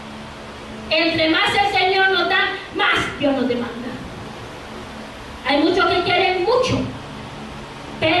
Entre más el Señor nos da, más Dios nos demanda. Hay muchos que quieren mucho,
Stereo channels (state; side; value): identical; both; correlation 1.00